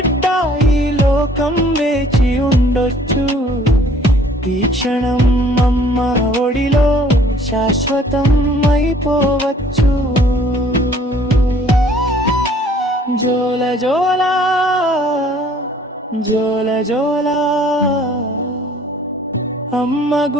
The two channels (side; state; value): both; normal; correlation 0.56